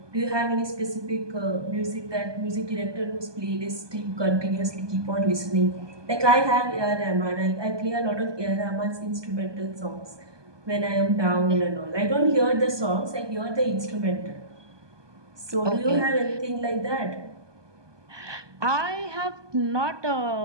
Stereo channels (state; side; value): late; left; 1.2 ms